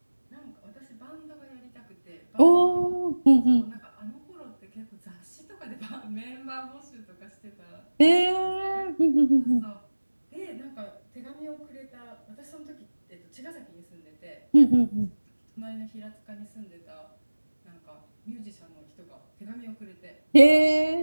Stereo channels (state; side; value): inverted; both; correlation -1.00